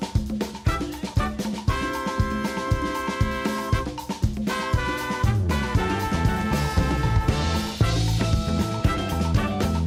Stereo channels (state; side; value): identical; both; correlation 1.00